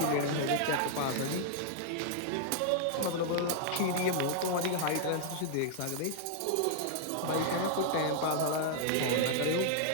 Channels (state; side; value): different; both; correlation -0.01